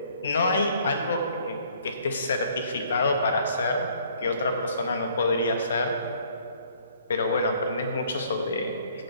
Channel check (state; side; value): inverted; both; correlation -0.60